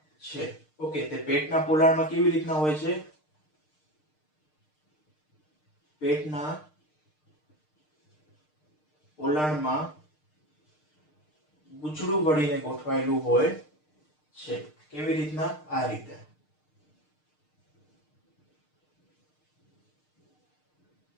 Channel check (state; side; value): late; right; 6.6 ms